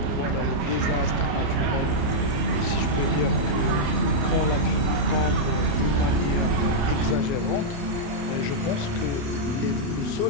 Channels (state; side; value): late; left; 29 ms